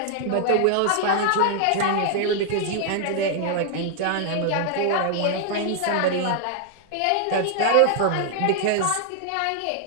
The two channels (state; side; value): different; both; correlation 0.00